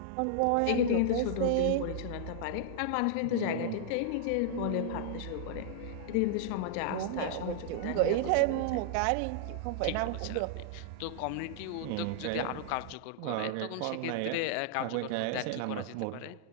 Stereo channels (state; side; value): different; both; correlation -0.01